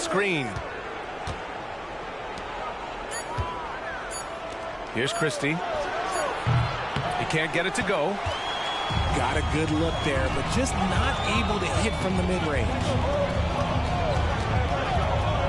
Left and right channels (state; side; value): identical; both; correlation 1.00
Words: Here's Christie. He can't get it to go. Got a good look there, but just not able to hit from the mid-range.